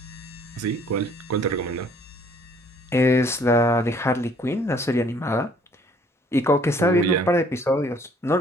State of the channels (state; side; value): normal; both; correlation 0.59